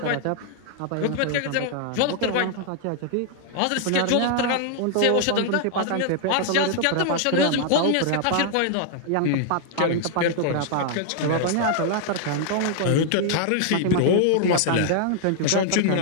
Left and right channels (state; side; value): different; both; correlation 0.00